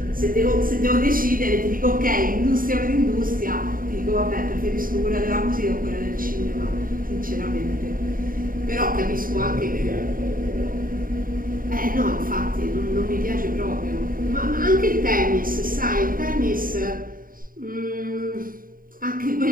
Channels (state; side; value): late; left; 0.41 ms